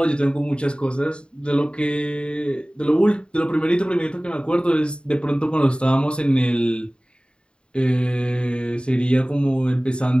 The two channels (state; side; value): late; right; 0.052 ms